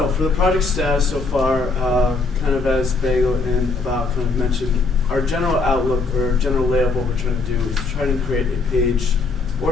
for the project status so far, kind of as Bagel and About kind of mentioned, our general outlook or general layout of what we're trying to do is trying to create a page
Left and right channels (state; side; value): quieter; right; 3.9 dB